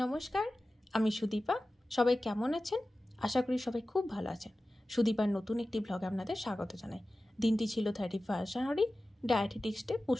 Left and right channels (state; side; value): normal; both; correlation 0.95